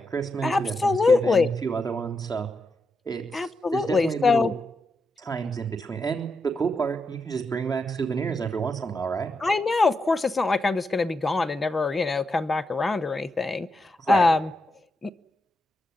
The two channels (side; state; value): both; normal; correlation 0.85